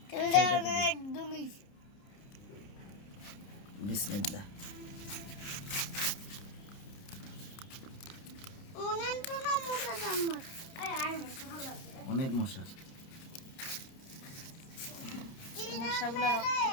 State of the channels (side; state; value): right; late; 30 ms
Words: বিসমিল্লাহ। অনেক মশা।